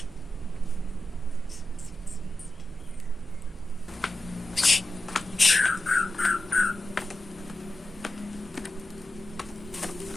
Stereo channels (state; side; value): normal; both; correlation 0.92